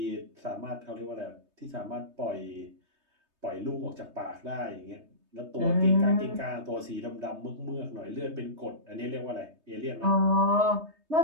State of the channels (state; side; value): late; left; 3.2 ms